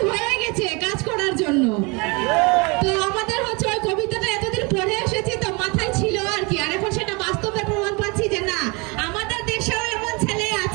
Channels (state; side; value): quieter; left; 28.7 dB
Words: হয়ে গেছে কাজ করার জন্য। তো আমাদের হচ্ছে ওই কবিতাটা এতদিন পড়ে এসেছি তো মাথায় ছিল আর কি, আর এখন সেটা বাস্তবে প্রমাণ পাচ্ছি যে না, আমাদের দেশেও এমন ছেলে